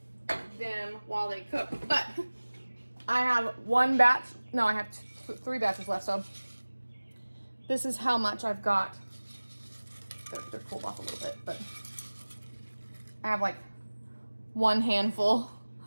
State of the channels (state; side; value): inverted; both; correlation -1.00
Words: them while they cook. But I have one batch, no, I have 3 batches left, so this is how much I've got. They're cooled off a little bit, but I have like 1 handful